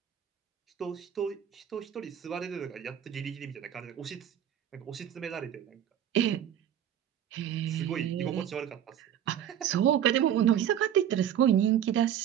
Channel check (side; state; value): left; quieter; 10.1 dB